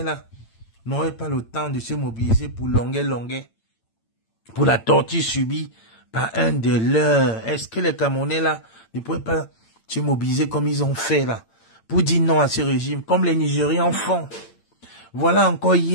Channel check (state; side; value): late; right; 8.8 ms